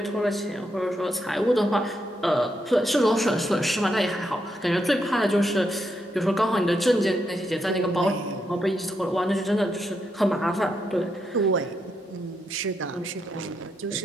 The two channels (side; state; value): both; normal; correlation 0.81